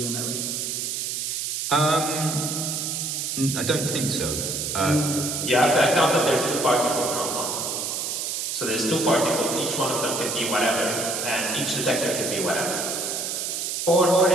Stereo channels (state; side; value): noise; right; hiss, 2 dB below the sound